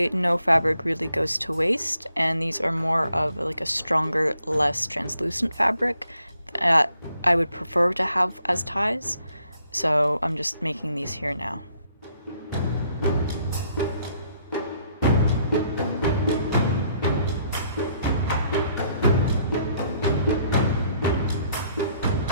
no fabric really goes to waste, and these are more of like a stronger, less translucent fabric that I would prefer to have as ties. So I'm just making these here now.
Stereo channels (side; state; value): both; inverted; correlation -0.69